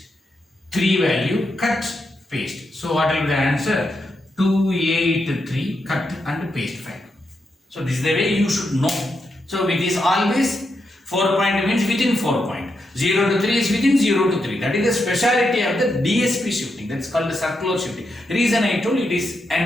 3 value, cut, paste. So what will be the answer? 2, 8, 3, cut and paste 5. So this is the way you should know. So it is always 4 point means within 4 point. 0 to 3 is within 0 to 3. That is the speciality of the DSP shifting. That's called the circular shifting. The reason I told it is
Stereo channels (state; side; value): normal; both; correlation 0.84